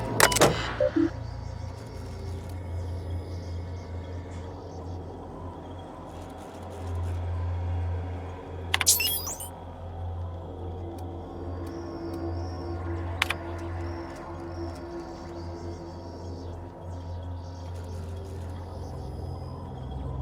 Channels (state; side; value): identical; both; correlation 1.00